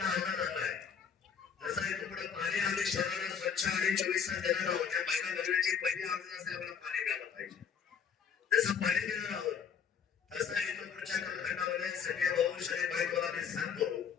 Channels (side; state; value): right; quieter; 7.0 dB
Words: अंदाज आणलाय जसं इथून पुढे पाणी आम्ही शहराला स्वच्छ आणि 24 तास देणार आहोत. त्या महिला भगिनीची पहिली आर्ज असते आपल्याला पाणी मिळालं पाहिजे. जसं पाणी देणार आहोत तसं इथून पुढच्या कालखंडामध्ये सगळे भाऊ शरीर बाईकवाला मी सांगतो